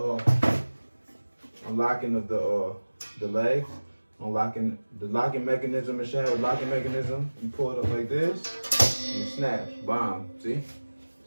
unlocking of the leg, unlocking the locking mechanism. It should have a locking mechanism. You pull it up like this, and it snaps. Bomb. See?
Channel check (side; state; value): both; inverted; correlation -1.00